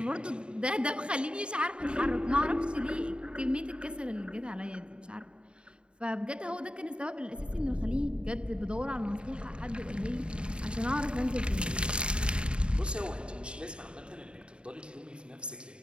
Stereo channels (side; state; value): left; late; 0.053 ms